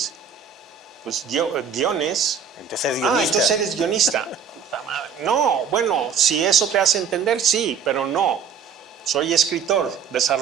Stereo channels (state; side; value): quieter; left; 6.8 dB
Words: Pues guiones. Entonces es guionista. Entonces eres guionista. No, bueno, si eso te hace entender, sí, pero no. Soy escritor,